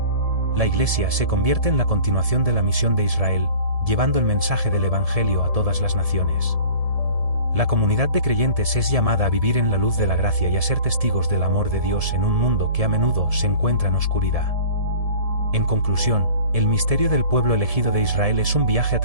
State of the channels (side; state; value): left; late; 1.7 ms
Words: La Iglesia se convierte en la continuación de la misión de Israel, llevando el mensaje del Evangelio a todas las naciones. La comunidad de creyentes es llamada a vivir en la luz de la gracia y a ser testigos del amor de Dios en un mundo que a menudo se encuentra en oscuridad. En conclusión, el misterio del pueblo elegido de Israel es un viaje a